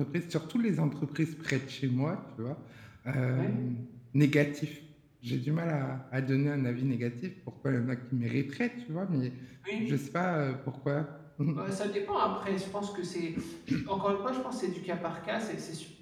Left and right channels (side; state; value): both; identical; correlation 1.00